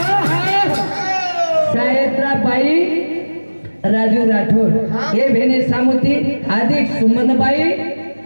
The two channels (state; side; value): inverted; both; correlation -1.00